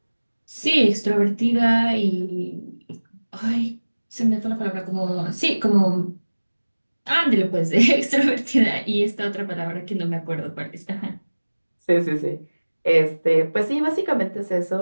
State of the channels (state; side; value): inverted; both; correlation -1.00